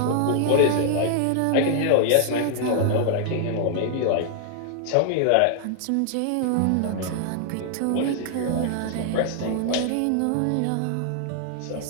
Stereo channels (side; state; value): both; different; correlation -0.01